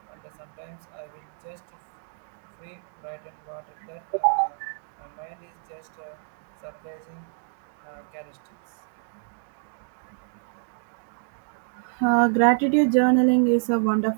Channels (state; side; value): silent; left; 58 dB below the other